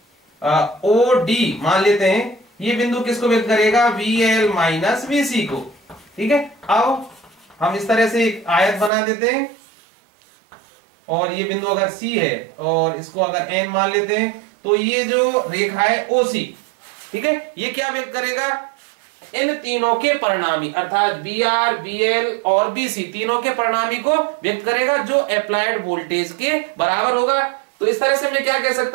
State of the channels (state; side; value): drops out; left; at 8.9 s